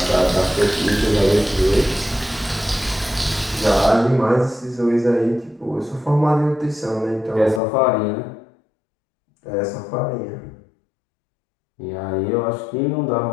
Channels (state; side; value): drops out; right; at 7.6 s